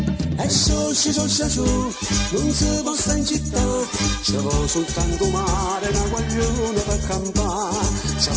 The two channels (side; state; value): both; identical; correlation 1.00